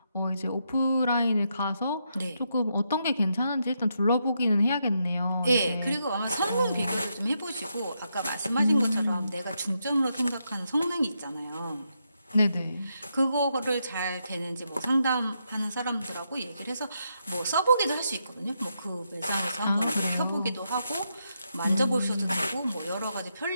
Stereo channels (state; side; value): inverted; both; correlation -0.81